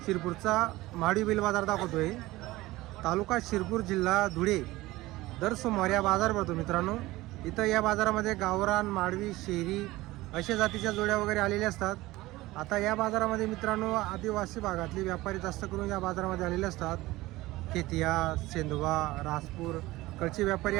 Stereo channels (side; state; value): left; quieter; 18.7 dB